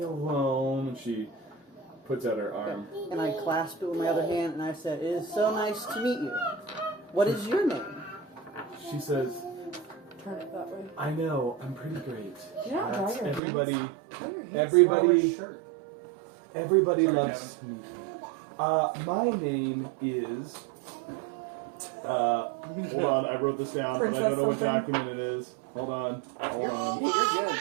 alone. And she puts out her arm. And I clasp it with my other hand and I said, "It is so nice to meet you. What is your name?" She says, Turn it that way. "I know, I'm pretty great." You're not drawing your Everybody, hands. Draw your hands. everybody, Shirt. everybody Sorry, loves me. My name is. Hold on, I wrote this down, but I don't know what Princess document it is. Hold on. You're good.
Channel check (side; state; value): left; drops out; at 13.4 s